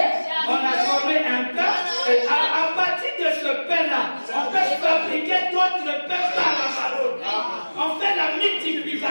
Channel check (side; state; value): both; inverted; correlation -1.00